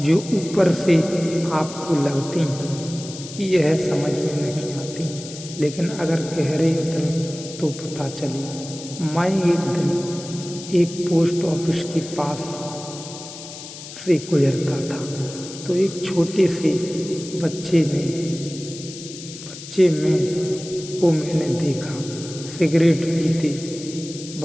जो ऊपर से आपको लगती हैं कि यह समझ में नहीं आती, लेकिन अगर गहरे उतरे तो पता चली। मैं एक दिन एक पोस्ट ऑफिस के पास से गुजरता था तो एक छोटे से बच्चे को मैंने देखा सिगरेट पीते।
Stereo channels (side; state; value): left; noise; hiss, 13 dB below the sound